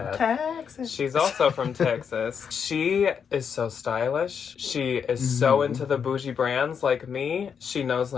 Texas. She's also from Texas. She is so stylish. She is so into the bougie brands like me. She knows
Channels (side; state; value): right; quieter; 7.0 dB